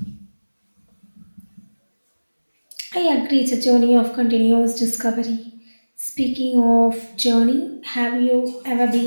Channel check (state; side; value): inverted; both; correlation -1.00